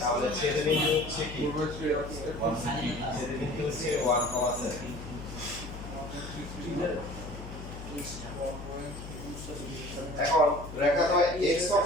তাহলে ছেদবিন্দু হচ্ছে কি 4/3 আছে ছেদবিন্দু হচ্ছে 1,7 এখন রেখা তো x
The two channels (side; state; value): left; noise; hum, 11 dB below the sound